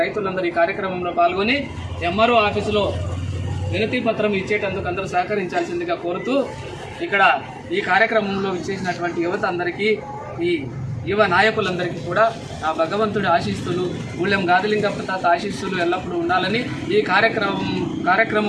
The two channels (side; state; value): both; identical; correlation 1.00